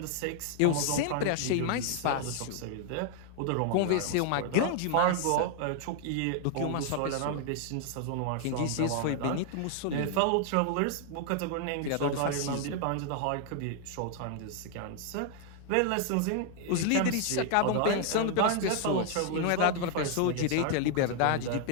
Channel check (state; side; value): different; both; correlation 0.00